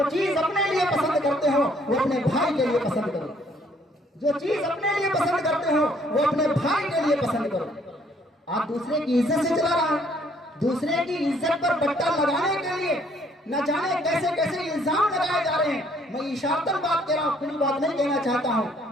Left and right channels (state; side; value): normal; both; correlation 0.64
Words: چیز اپنے لیے پسند کرتے ہو وہ اپنے بھائی کے لیے پسند کرو، جو چیز اپنے لیے پسند کرتے ہو وہ اپنے بھائی کے لیے پسند کرو۔ آپ دوسرے کی عزت سے چلا رہا ہے، دوسرے کی عزت پر بٹا لگانے کے لیے نہ جانے کیسے کیسے الزام لگائے جا رہے ہیں۔ میں اشارتاً بات کہہ رہا ہوں، کھلی بات نہیں کہنا چاہتا ہوں۔